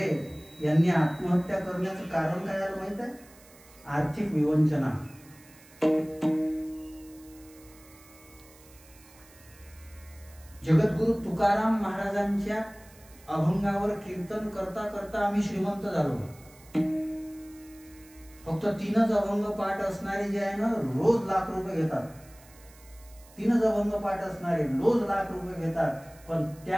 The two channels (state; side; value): noise; right; hiss, 24 dB below the sound